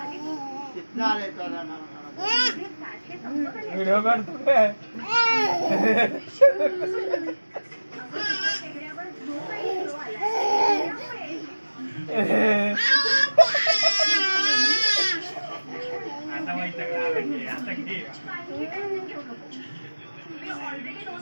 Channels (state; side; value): inverted; both; correlation -1.00